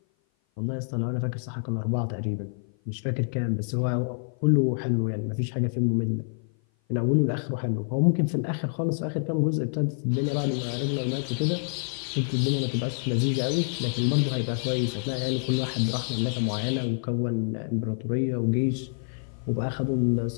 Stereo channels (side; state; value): right; silent; 56 dB below the other